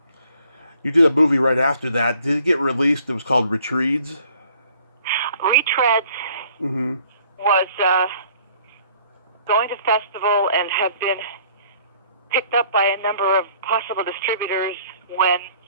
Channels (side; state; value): both; inverted; correlation -0.58